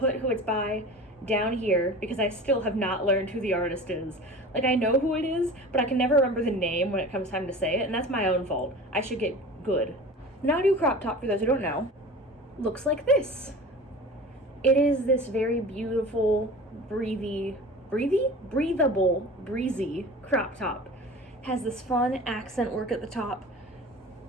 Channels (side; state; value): both; normal; correlation 0.37